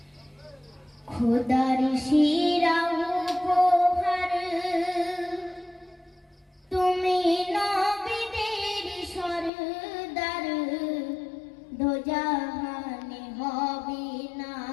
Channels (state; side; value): drops out; right; at 9.5 s